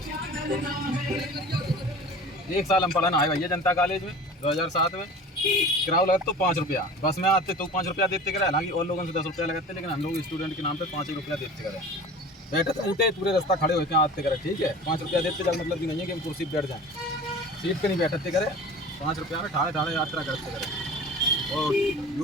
एक साल हम पढ़ने आए भैया जनता कॉलेज में 2007 में किराया लगता तो 5 रुपया बस में आते तो 5 रुपया देते करे हालांकि और लोगों से 10 रुपया लगाते लेकिन हम लोग स्टूडेंट के नाम पे 5 रुपया देते करे बैठे उठे पूरे रास्ता खड़े होते हैं आते करे ठीक है 5 रुपया देते जब मतलब कि नहीं है कि हम कुर्सी पर बैठ जाएँ सीट पे नहीं बैठते करे 5 रुपया में ठाड़े ठाड़े यात्रा करते करे और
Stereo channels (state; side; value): normal; both; correlation 0.39